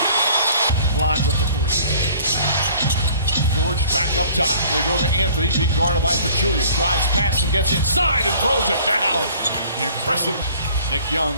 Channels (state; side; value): inverted; both; correlation -0.52